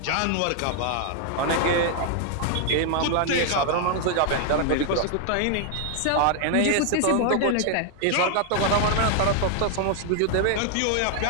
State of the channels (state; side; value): different; both; correlation 0.00